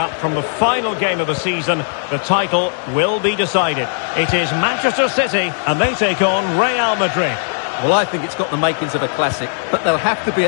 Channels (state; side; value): silent; right; digital silence